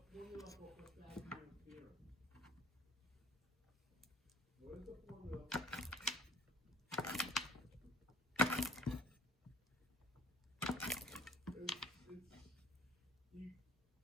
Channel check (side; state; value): both; normal; correlation 0.51